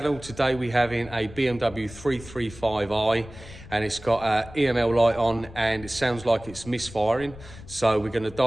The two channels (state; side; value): noise; left; rumble, 17 dB below the sound